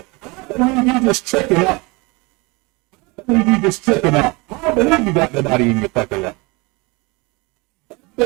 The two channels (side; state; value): left; quieter; 26.5 dB